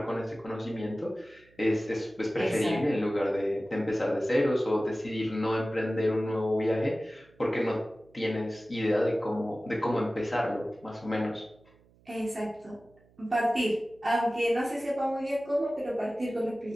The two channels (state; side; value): noise; right; hum, 30 dB below the sound